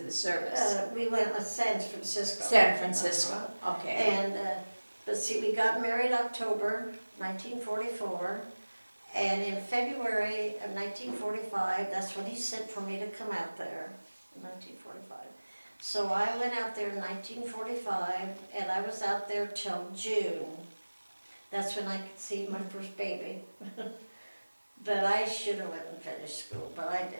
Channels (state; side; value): inverted; both; correlation -1.00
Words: the service? We went to San Francisco. San Francisco, okay. And, but see, we got married October 1944. And in February of 1945, that's when he sent for me to come out there, in 1945. So I went out there in 1945, and I was out there till June. That's when I could see my first baby. But I should have went and finished school, but I